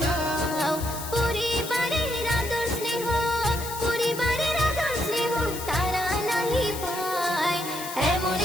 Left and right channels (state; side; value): noise; left; hiss, 9 dB below the sound